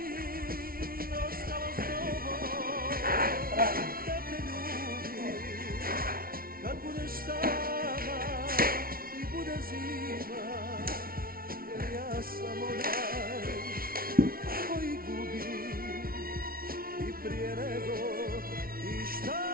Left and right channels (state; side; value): late; left; 0.43 ms